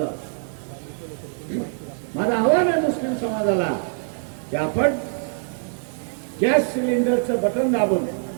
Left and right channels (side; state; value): left; silent; digital silence